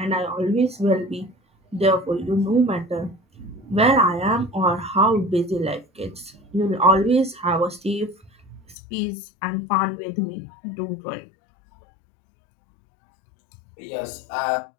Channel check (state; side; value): drops out; right; at 8.8 s